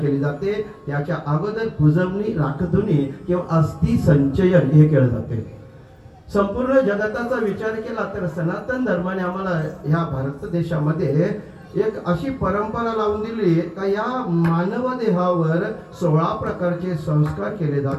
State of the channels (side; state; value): both; identical; correlation 1.00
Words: जाते. त्याच्या अगोदर पूजवणी, राखधुनी किंवा अस्थि संचयन हे केलं जाते. संपूर्ण जगताचा विचार केला तर सनातन धर्माने आम्हाला ह्या भारत देशामध्ये एक अशी परंपरा लावून दिली का या मानव देहावर 16 प्रकारचे संस्कार केले